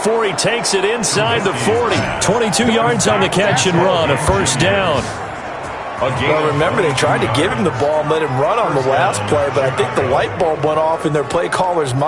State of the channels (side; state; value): both; identical; correlation 1.00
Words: he takes it inside the 40. 22 yards on the catch and run, a 1st down. Well, remember, they tried to give him the ball and let him run on the last play, but I think the light bulb went off in their play caller's